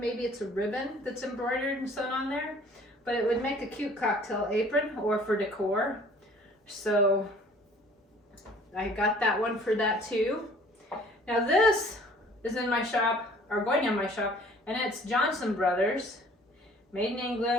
it's a ribbon that's embroidered and sewn on there, but it would make a cute cocktail apron or for decor. So I got that one for that too. Now this is in my shop, or going in my shop, and it's Johnson Brothers, made in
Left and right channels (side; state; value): both; normal; correlation 0.53